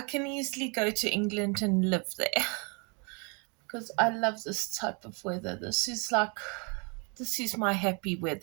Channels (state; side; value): quieter; left; 33.0 dB